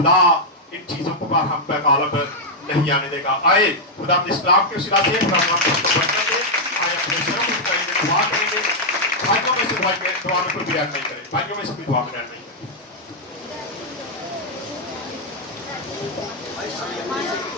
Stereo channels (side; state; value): both; normal; correlation -0.04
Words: इन चीजों को पर हम पे गालिब नहीं आने देगा। आए खुदा इस्लाम के उस रास्ते पर हम आए अपने शर्म दुआ करेंगे। भाइयों में से दुआ में कोई भी ऐड नहीं करे, भाइयों में से कोई दुआ में ऐड नहीं करे।